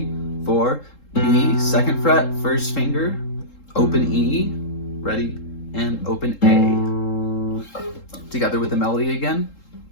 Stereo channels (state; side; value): late; right; 3.7 ms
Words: 4, B, second fret, first finger, open E, ready, and open A. Together with the melody again.